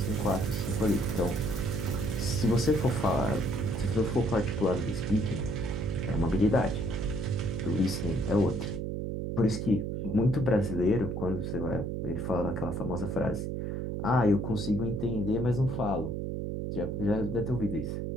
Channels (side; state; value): right; noise; hum, 3 dB below the sound